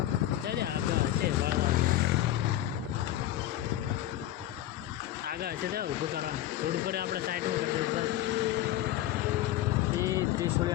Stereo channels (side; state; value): right; quieter; 13.5 dB